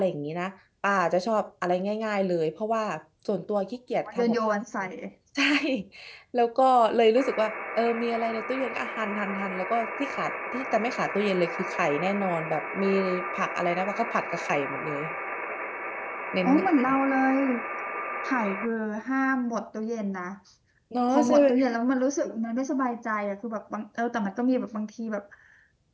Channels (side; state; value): both; identical; correlation 1.00